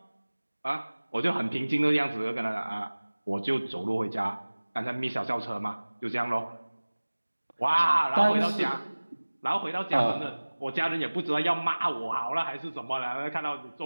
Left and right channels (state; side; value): inverted; both; correlation -1.00